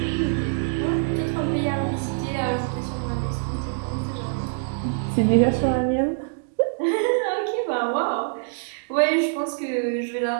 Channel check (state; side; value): silent; left; digital silence